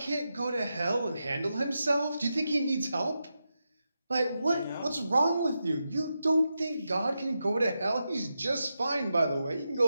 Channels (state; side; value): inverted; both; correlation -0.88